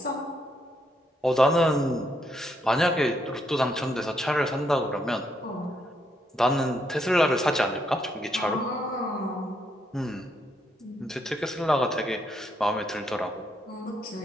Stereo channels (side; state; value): both; normal; correlation 0.76